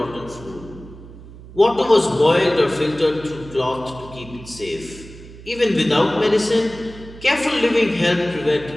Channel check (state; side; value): noise; right; hum, 17 dB below the sound